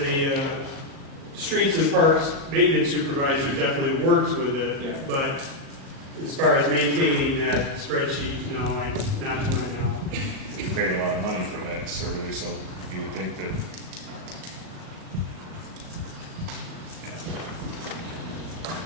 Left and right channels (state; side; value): late; left; 37 ms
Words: streets and parks maintenance supervisor definitely works with it, Yeah. but as far as maintaining that spreadsheet, no, not to my knowledge. You paid a lot of money for that survey, so you would think that.